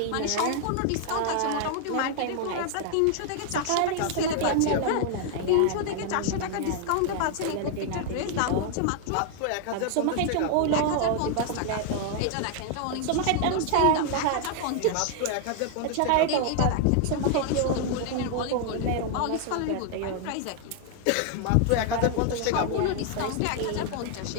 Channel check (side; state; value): both; different; correlation 0.00